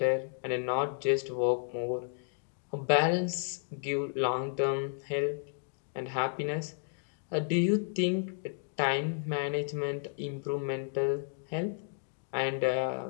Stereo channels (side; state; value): right; silent; digital silence